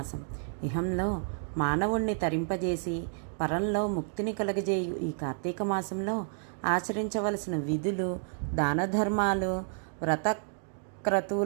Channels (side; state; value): left; silent; digital silence